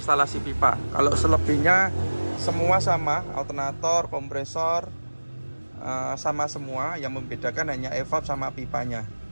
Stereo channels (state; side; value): inverted; both; correlation -1.00